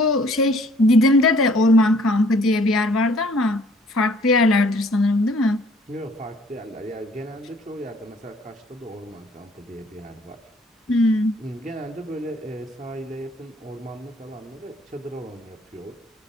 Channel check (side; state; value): both; normal; correlation 0.58